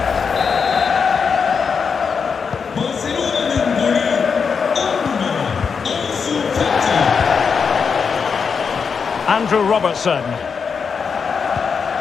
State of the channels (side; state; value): right; quieter; 5.9 dB